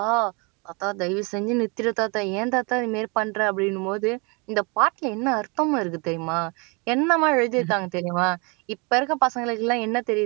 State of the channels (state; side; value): quieter; left; 31.0 dB